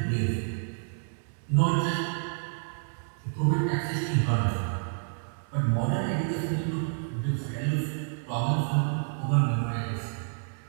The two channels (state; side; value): silent; left; digital silence